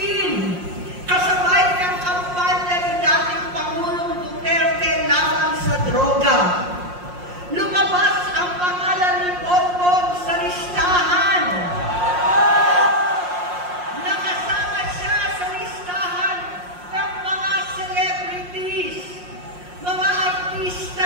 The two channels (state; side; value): late; left; 5.6 ms